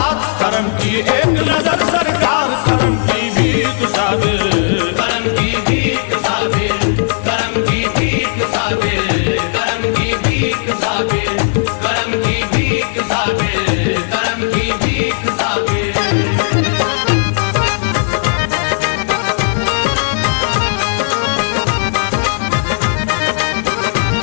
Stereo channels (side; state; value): right; silent; digital silence